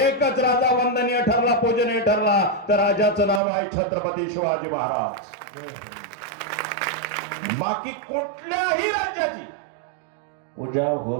राजा वंदनीय ठरला, पूजनीय ठरला, तर राजाचं नाव आहे छत्रपती शिवाजी महाराज. बाकी कुठल्याही राज्याची पूजा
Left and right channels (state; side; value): drops out; left; at 3.4 s